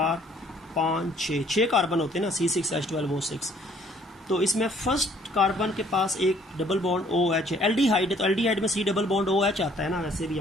5 6 कार्बन होते हैं ना C6H12O6। तो इसमें फर्स्ट कार्बन के पास एक डबल बॉन्ड OH है, एल्डिहाइड है, तो एल्डिहाइड में C डबल बॉन्ड OH आता है ना वैसे भी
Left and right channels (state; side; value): normal; both; correlation 0.60